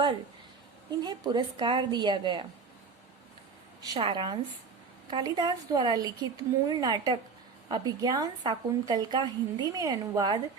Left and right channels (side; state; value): left; quieter; 5.0 dB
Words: इन्हें पुरस्कार दिया गया। सारांश: कालिदास द्वारा लिखित मूल नाटक अभिज्ञान शाकुंतल का हिंदी में अनुवाद